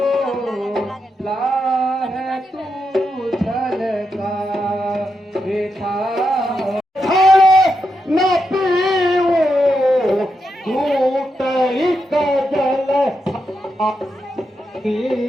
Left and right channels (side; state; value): both; normal; correlation 0.84